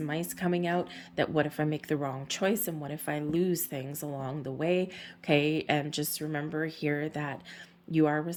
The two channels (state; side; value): identical; both; correlation 1.00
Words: coming out, that what if I make the wrong choice and what if I lose things along the way, okay? And just remember here that You are